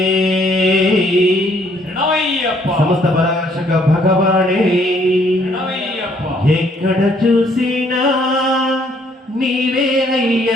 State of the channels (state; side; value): normal; both; correlation 0.66